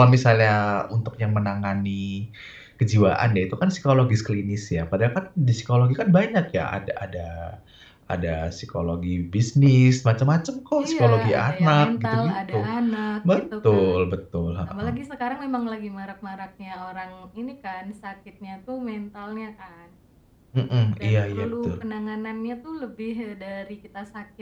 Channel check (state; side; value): identical; both; correlation 1.00